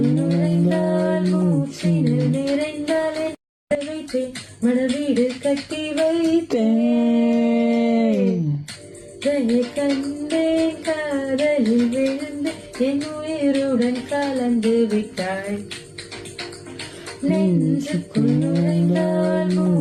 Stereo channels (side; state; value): both; identical; correlation 1.00